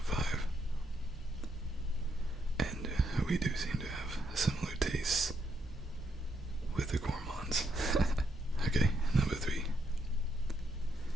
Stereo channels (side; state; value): both; normal; correlation 0.77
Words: 5. And we do seem to have similar tastes with the gourmands. Okay, number 3.